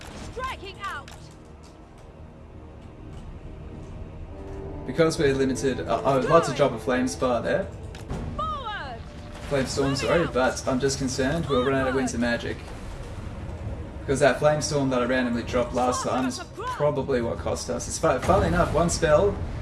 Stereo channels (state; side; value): identical; both; correlation 1.00